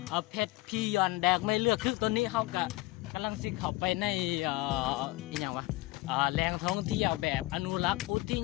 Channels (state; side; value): quieter; right; 19.6 dB